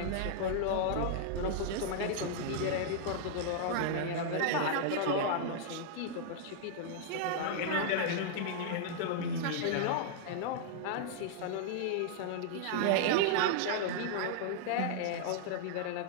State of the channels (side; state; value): both; different; correlation -0.01